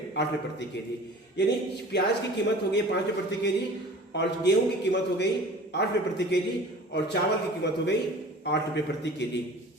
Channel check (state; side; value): normal; both; correlation 0.43